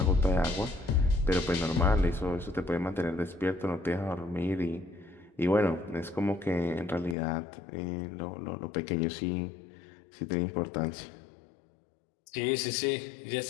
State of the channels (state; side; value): drops out; right; at 7.2 s